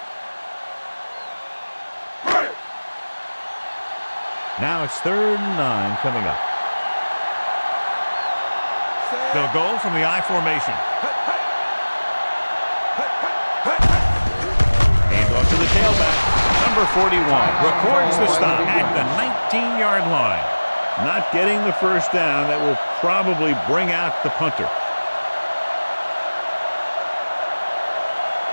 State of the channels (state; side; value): inverted; both; correlation -1.00